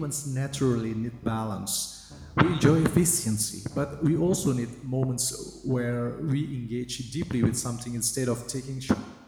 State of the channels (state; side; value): identical; both; correlation 1.00